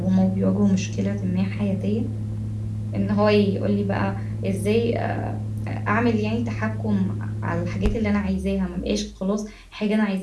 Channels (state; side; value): identical; both; correlation 1.00